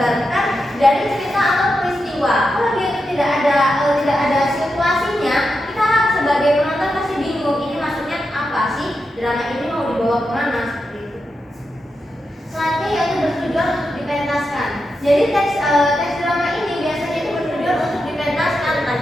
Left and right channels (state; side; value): normal; both; correlation 0.87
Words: dari cerita atau peristiwa. Kalau dia itu tidak ada situasinya, kita sebagai penonton pasti bingung ini maksudnya apa sih, drama ini mau dibawa kemana, seperti itu. Selanjutnya yaitu bertujuan untuk dipentaskan. Jadi teks drama ini biasanya itu bertujuan untuk dipentaskan, entah